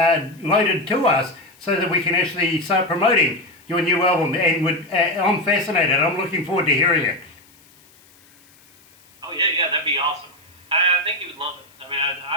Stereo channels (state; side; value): noise; left; hiss, 29 dB below the sound